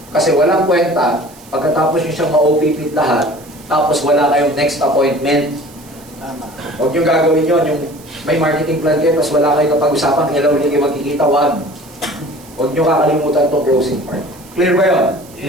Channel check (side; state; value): right; noise; hiss, 23 dB below the sound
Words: Kasi walang kwenta, pagkatapos nyo siyang ma-OPP lahat, tapos wala kayong next appointment. Huwag nyo gagawin yun, yung may marketing plan kayo, tapos wala kayong kapag-usapan, kailan ulit kayo magkikita, huwag nyo kakalimutan itong closing part. Clear ba yun?